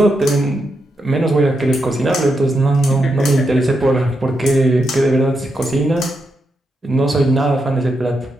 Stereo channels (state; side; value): normal; both; correlation 0.84